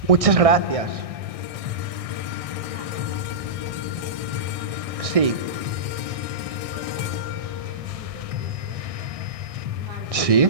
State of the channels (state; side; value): late; left; 1.6 ms